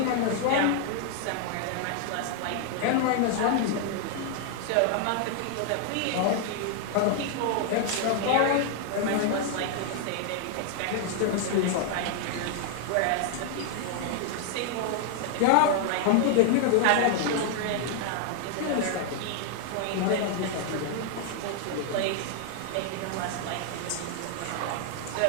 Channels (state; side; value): different; both; correlation 0.00